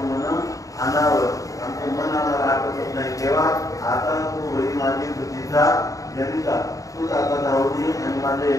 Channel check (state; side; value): late; right; 0.16 ms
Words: अनावर आमचं मन आम्हाला आठवत नाही तेव्हा आता तू होई माझी बुद्धीचा जनिता तूच आता धावली आणि माझ्या